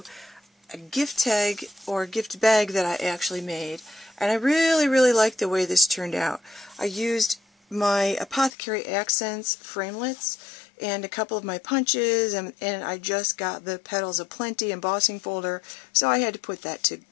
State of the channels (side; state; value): right; drops out; at 8.5 s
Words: a gift tag or gift bag that I actually made, and I really like the way this turned out. I used my Apothecary accents framelits and a couple of my punches, and I just got the petals-a-plenty embossing folder, so I had to put that to